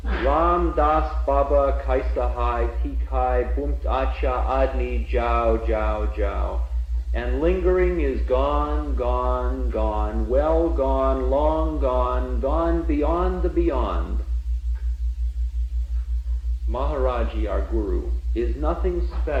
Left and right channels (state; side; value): identical; both; correlation 1.00